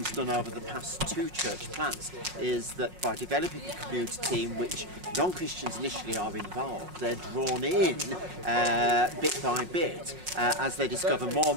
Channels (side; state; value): left; late; 5.5 ms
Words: done over the past 2 church plants, is that by developing a community in which non-Christians initially are involved, they're drawn in bit by bit as they discover more